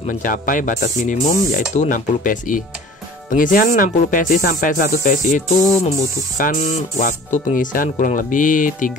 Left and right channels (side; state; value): both; normal; correlation 0.45